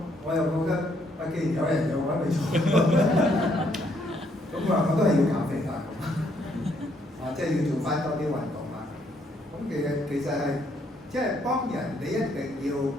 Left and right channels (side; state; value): both; normal; correlation 0.70